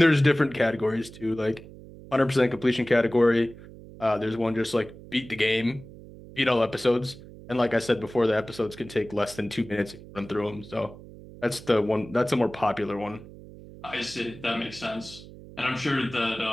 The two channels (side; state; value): right; noise; hum, 17 dB below the sound